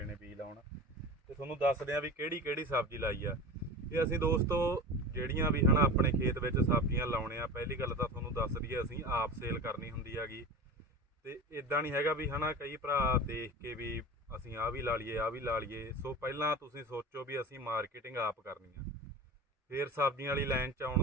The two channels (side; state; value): both; normal; correlation 0.32